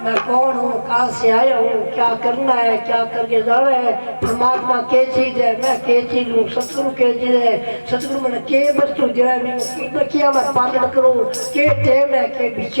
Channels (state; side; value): inverted; both; correlation -1.00